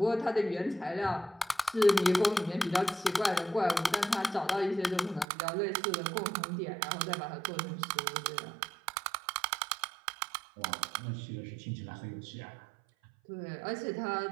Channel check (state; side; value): drops out; left; at 5.2 s